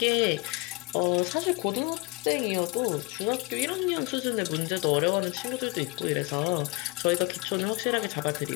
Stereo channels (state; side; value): quieter; right; 24.9 dB